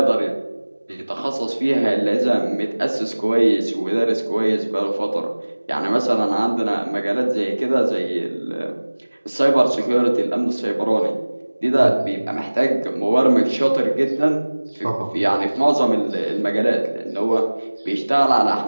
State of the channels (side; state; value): both; inverted; correlation -1.00